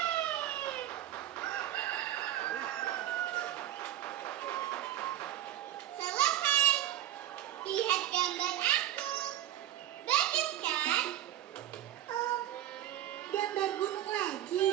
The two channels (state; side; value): quieter; left; 12.8 dB